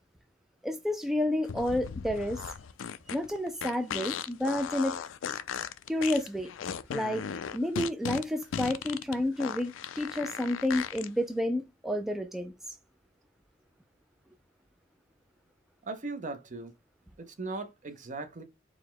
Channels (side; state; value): both; normal; correlation 0.77